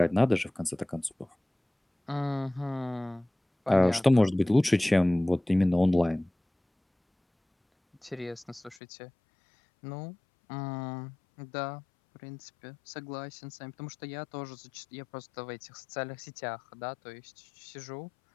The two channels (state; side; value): drops out; right; at 8.8 s